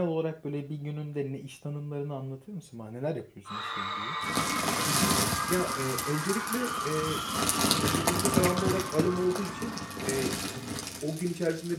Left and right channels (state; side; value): identical; both; correlation 1.00